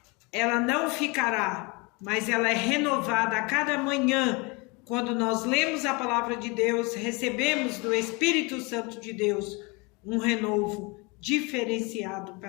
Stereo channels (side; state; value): right; quieter; 27.8 dB